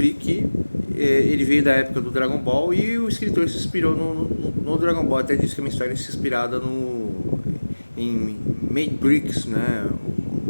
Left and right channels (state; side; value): inverted; both; correlation -1.00